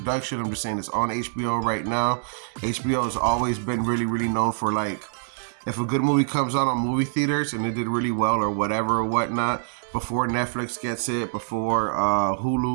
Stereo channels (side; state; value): left; silent; digital silence